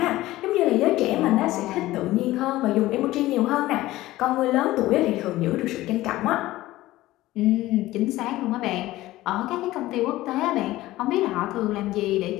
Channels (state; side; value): quieter; right; 16.8 dB